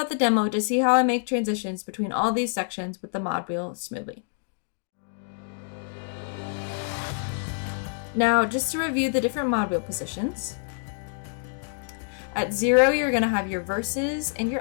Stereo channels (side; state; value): right; silent; digital silence